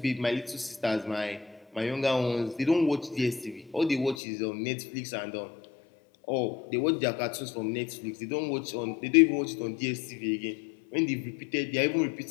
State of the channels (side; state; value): right; drops out; at 4.2 s